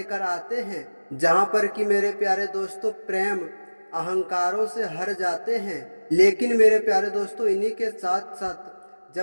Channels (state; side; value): inverted; both; correlation -1.00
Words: आते हैं जहां पर कि मेरे प्यारे दोस्तों प्रेम अहंकारों से हर जाते हैं। लेकिन मेरे प्यारे दोस्तों इन्हीं के साथ साथ